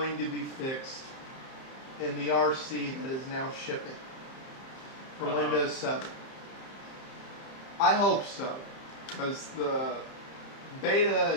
to be fixed in the RC that is now shipping for Windows 7. I hope so, because the beta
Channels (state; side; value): late; right; 30 ms